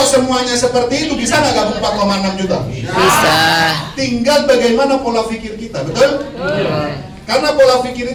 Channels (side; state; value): both; identical; correlation 1.00